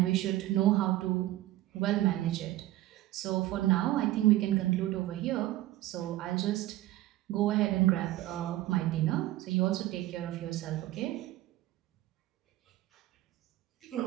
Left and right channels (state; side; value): quieter; left; 15.7 dB